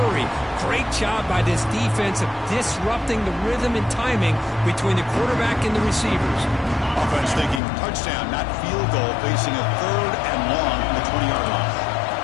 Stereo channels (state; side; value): drops out; right; at 7.6 s